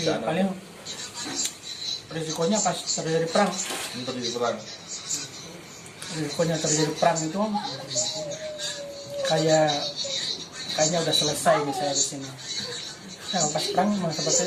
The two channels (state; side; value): identical; both; correlation 1.00